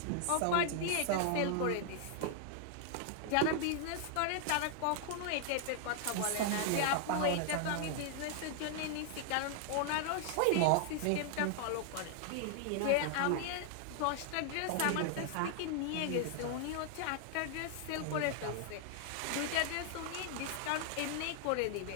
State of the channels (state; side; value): different; both; correlation 0.00